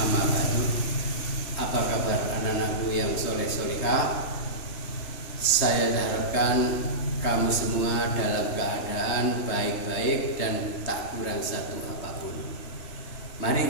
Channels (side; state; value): right; late; 3.3 ms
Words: ba'du. Apa kabar anak-anakku yang soleh-solihah? Saya harapkan kamu semua dalam keadaan baik-baik dan tak kurang satu apapun.